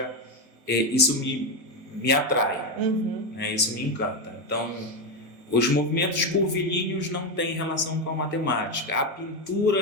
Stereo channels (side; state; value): left; late; 1.8 ms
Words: isso me atrai, né? Isso me encanta. Então, os movimentos curvilíneos não têm relação com a matemática. A